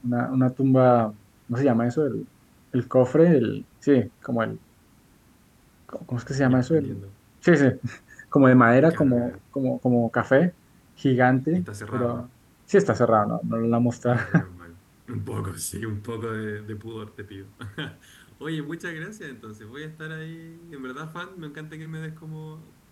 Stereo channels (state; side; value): identical; both; correlation 1.00